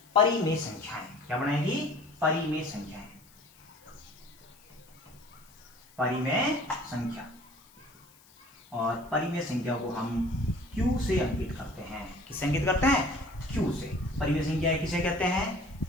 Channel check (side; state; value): left; noise; hiss, 27 dB below the sound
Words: परिमेय संख्याएं। क्या बनाएगी? परिमेय संख्याएं। परिमेय संख्या। और परिमेय संख्या को हम Q से अंकित करते हैं। किससे अंकित करते हैं? Q से। परिमेय संख्याएं किसे कहते हैं?